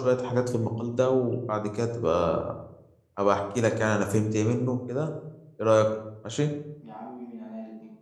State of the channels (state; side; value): identical; both; correlation 1.00